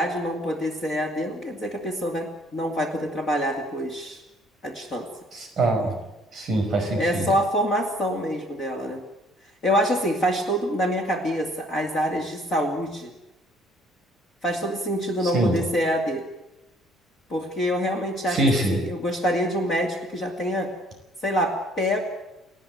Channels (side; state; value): both; normal; correlation 0.60